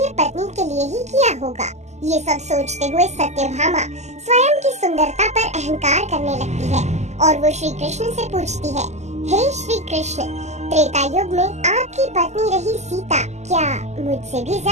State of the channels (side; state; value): left; late; 0.33 ms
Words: पत्नी के लिए ही किया होगा। ये सब सोचते हुए सत्यभामा स्वयं की सुंदरता पर अहंकार करने लगती है और वो श्री कृष्ण से पूछती है, हे श्री कृष्ण, त्रेता युग में आपकी पत्नी रही सीता क्या मुझसे भी